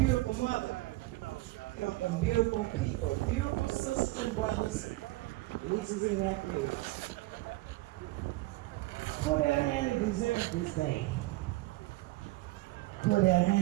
mother. Come from beautiful people, beautiful sisters and brothers, nieces and nephews. Cordale Handy deserves this day. Cordale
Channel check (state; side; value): quieter; left; 20.3 dB